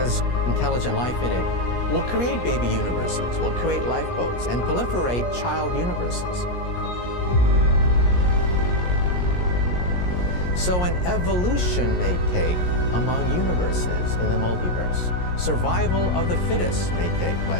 intelligent life in it will create baby universes, will create lifeboats, and proliferate child universes. So an evolution may take among universes in the multiverse. Survival of the fittest may take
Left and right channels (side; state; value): right; late; 17 ms